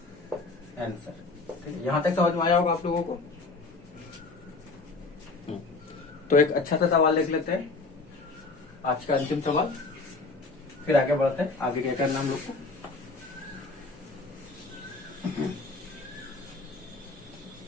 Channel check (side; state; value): right; quieter; 3.7 dB